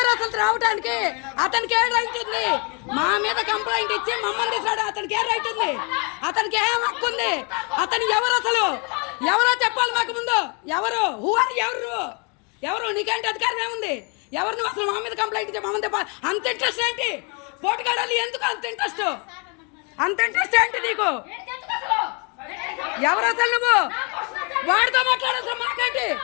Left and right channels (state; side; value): quieter; right; 34.1 dB